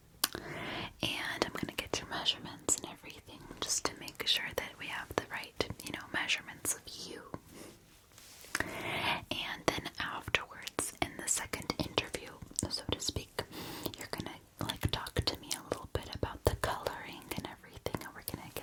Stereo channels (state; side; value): identical; both; correlation 1.00